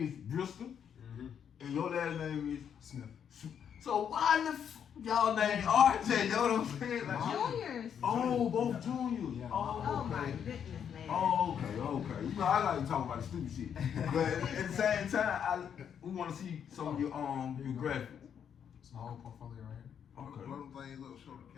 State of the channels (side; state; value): right; quieter; 8.2 dB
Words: is Bristol, and your last name is Smith. So, why the y'all name RJ? You know what I'm saying? Like, Juniors. oh, both juniors. Yeah. Oh my okay. goodness, man. Oh, okay. You know, I like to talk about the stupid shit, but at the same time, we want to see some of your graphics. It's my whole portfolio right here. Okay. Blow them things up, show the